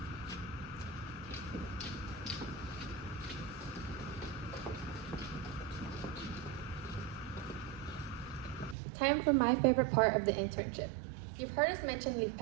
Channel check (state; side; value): drops out; left; at 8.8 s